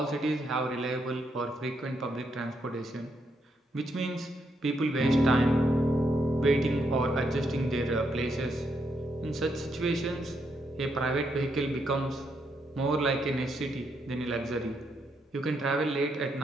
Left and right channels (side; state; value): both; normal; correlation 0.78